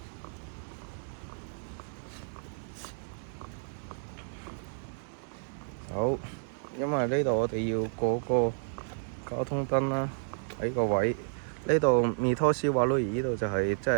好，因為呢度我哋要過個交通燈啦，喺個位呢度彌托斯瓦魯爾呢度就係即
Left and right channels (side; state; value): left; silent; digital silence